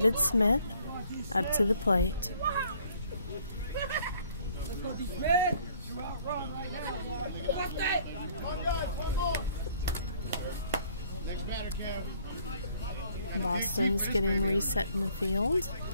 Smith, up to the plate. Boston's getting reset in the field.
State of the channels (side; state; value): both; inverted; correlation -0.60